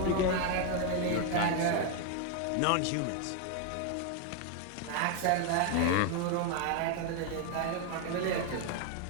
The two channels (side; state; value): both; different; correlation 0.01